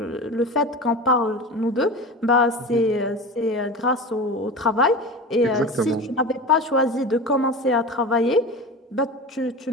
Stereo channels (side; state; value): both; normal; correlation 0.30